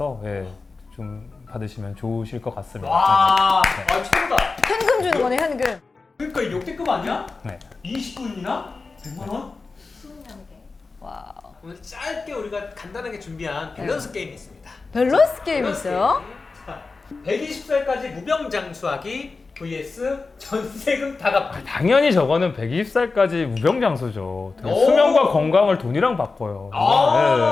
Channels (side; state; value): right; quieter; 4.0 dB